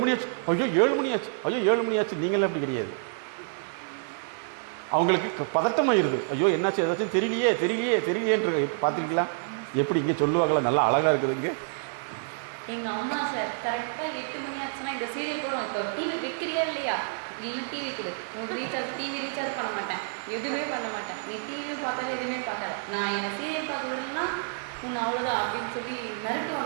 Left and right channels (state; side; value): silent; left; 59 dB below the other